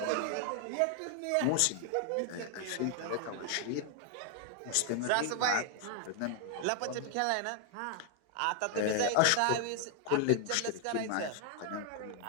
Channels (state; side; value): different; both; correlation 0.00